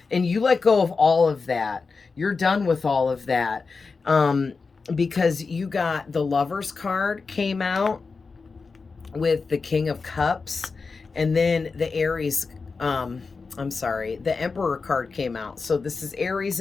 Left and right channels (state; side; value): quieter; right; 4.5 dB